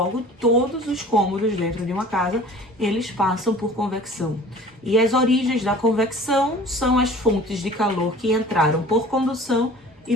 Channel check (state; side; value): normal; both; correlation 0.45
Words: todos os cômodos dentro de uma casa, eles passam por convecção. E as origens da convecção são as fontes de calor que entraram por condução